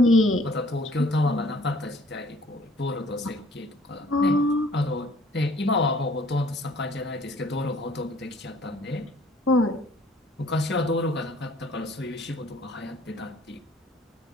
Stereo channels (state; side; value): normal; both; correlation 0.56